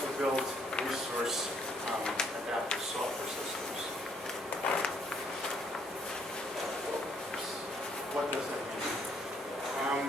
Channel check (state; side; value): normal; both; correlation 0.68